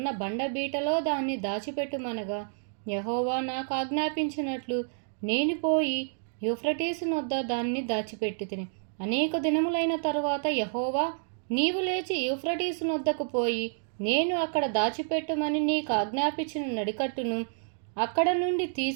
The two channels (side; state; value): left; silent; digital silence